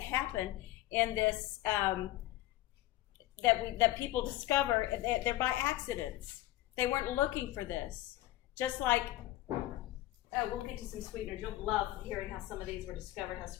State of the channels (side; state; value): right; quieter; 16.0 dB